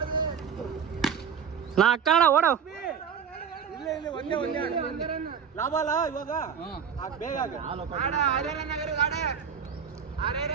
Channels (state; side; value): quieter; left; 7.3 dB